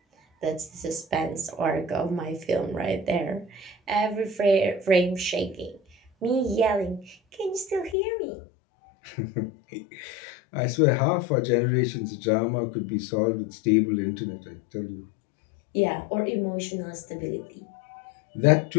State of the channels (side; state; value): right; drops out; at 8.0 s